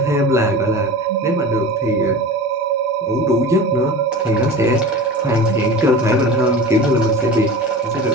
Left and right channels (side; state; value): both; normal; correlation 0.34